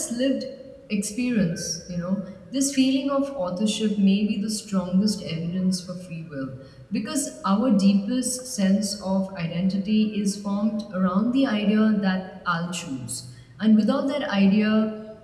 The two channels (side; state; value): both; identical; correlation 1.00